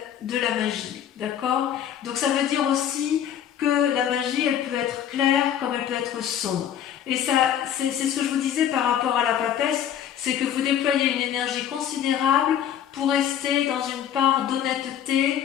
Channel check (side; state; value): right; quieter; 9.9 dB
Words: de la magie, d'accord? Donc ça veut dire aussi que la magie, elle peut être claire comme elle peut être sombre. Et ça, c'est ce que je vous disais par rapport à la papesse, c'est que vous déployez une énergie considérable pour rester dans une part